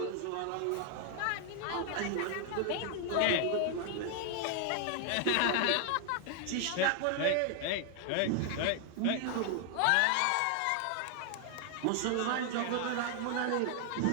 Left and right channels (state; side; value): different; both; correlation 0.00